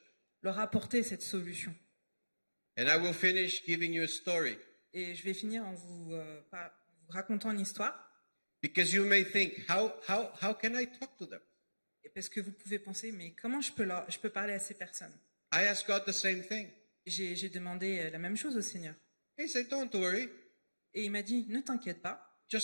leur apporter cette solution. And I will finish giving you a story. Et je vais finir en vous racontant une histoire, Because you may think, how can I talk to them? parce que vous pouvez penser, mais comment je peux parler à ces personnes? I asked God the same thing. J'ai demandé la même chose au Seigneur. He said, don't worry, Et il m'a dit, ne t'inquiète pas,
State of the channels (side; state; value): both; inverted; correlation -1.00